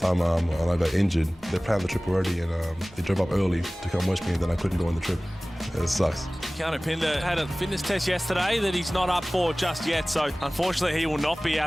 time when I got injured, they planned the trip already and they drove up early to come watch me and then I couldn't go on the trip. It sucks. Keanu Pinder had a fitness test yesterday that he's not up for just yet, so unfortunately he will not be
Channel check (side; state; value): both; normal; correlation 0.98